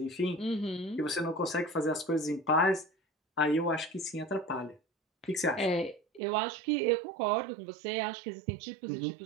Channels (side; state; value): left; drops out; at 6.2 s